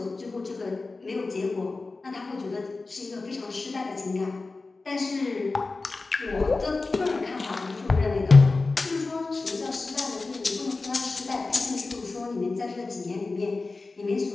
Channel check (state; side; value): quieter; right; 3.7 dB